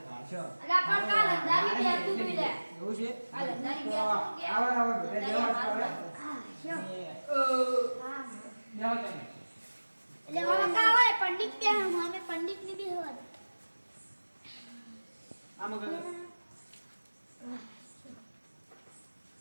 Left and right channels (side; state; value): both; inverted; correlation -1.00